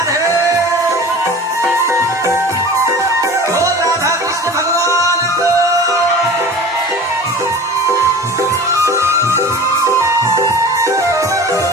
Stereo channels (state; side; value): normal; both; correlation 0.38